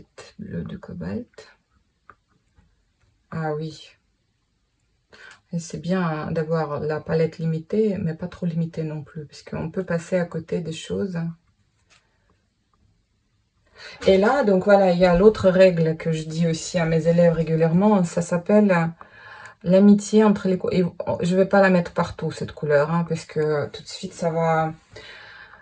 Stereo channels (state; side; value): identical; both; correlation 1.00